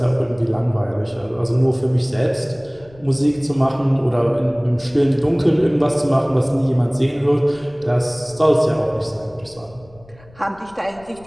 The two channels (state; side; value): noise; left; rumble, 25 dB below the sound